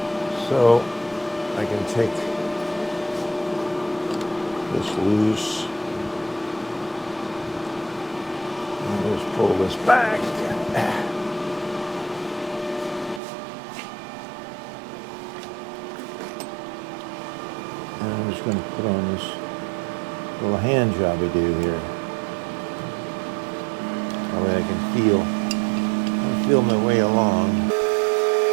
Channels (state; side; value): drops out; left; at 13.2 s